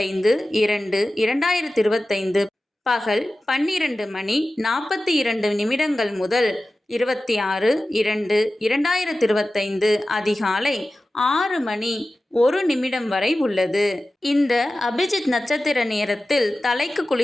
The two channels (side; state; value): both; normal; correlation 0.95